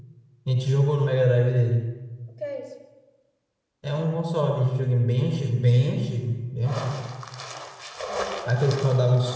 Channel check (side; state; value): both; identical; correlation 1.00